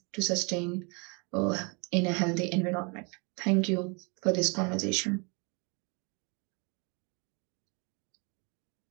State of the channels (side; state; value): left; quieter; 32.3 dB